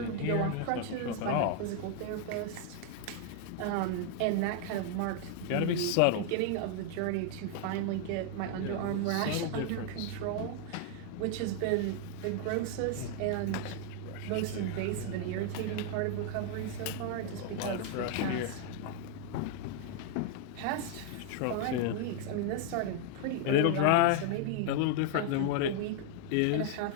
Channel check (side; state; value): both; different; correlation 0.00